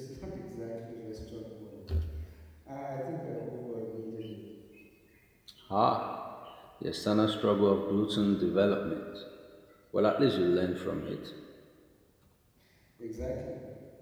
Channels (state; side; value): identical; both; correlation 1.00